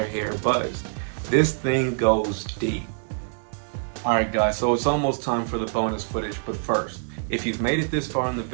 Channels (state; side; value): silent; left; 61 dB below the other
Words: hair buzzed. This thing goes deep. Alright guys, so it's almost time for the bonus footage, but first, if you've made it this far in the